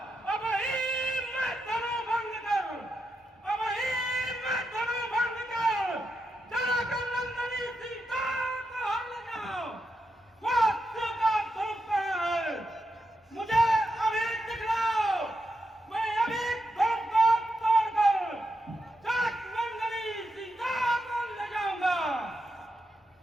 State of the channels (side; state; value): both; normal; correlation 0.85